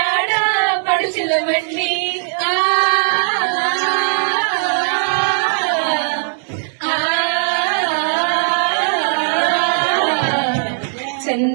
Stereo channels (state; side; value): silent; left; digital silence